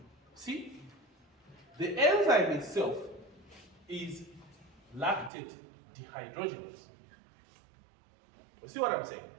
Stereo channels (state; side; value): drops out; left; at 5.3 s